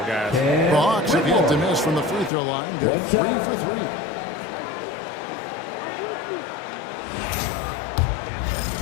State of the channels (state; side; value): drops out; right; at 2.3 s